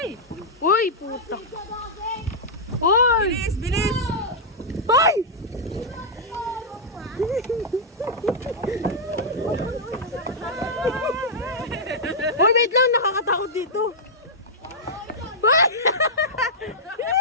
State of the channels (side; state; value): both; normal; correlation -0.08